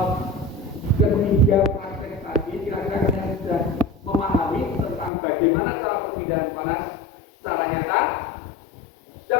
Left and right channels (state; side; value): drops out; right; at 5.1 s